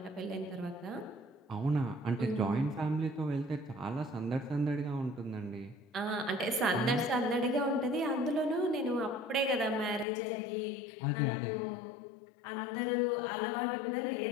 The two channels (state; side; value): drops out; right; at 10.1 s